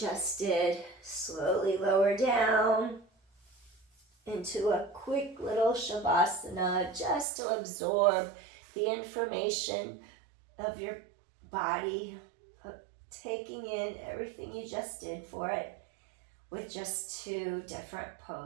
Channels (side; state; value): left; drops out; at 7.2 s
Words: did. Slowly lower down into a quick little Savasana, just to absorb the information of your body, taking in everything you just did for it with just 2 different